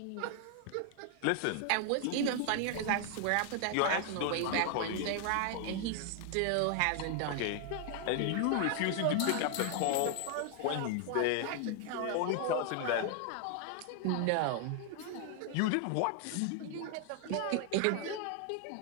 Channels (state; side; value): different; both; correlation 0.00